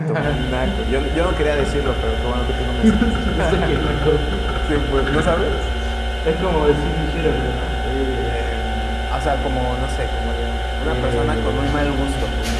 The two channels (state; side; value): identical; both; correlation 1.00